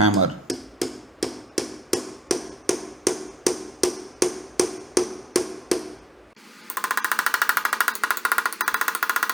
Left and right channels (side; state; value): both; normal; correlation 0.81